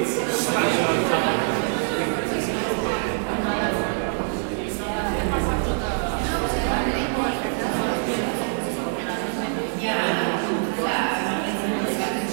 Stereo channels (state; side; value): silent; left; 62 dB below the other